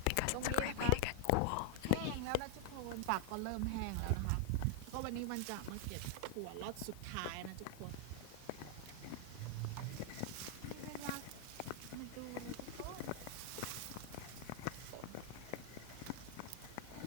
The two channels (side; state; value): both; different; correlation 0.00